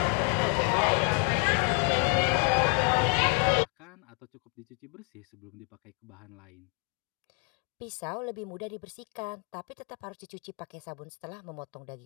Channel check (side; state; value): right; quieter; 37.5 dB